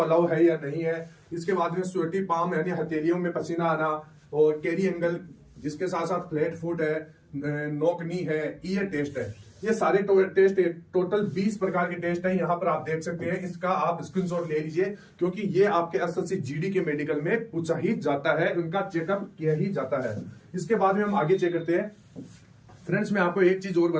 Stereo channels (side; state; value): both; identical; correlation 1.00